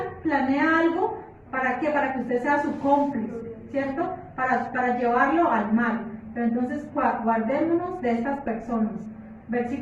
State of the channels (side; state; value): both; identical; correlation 1.00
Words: planea algo. ¿Para qué? Para que usted sea su cómplice, ¿cierto? Para llevarlo al mal. Pero entonces guardémonos de estas personas.